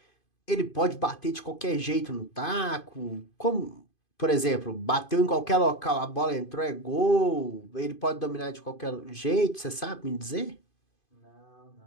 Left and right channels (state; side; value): late; right; 2.5 ms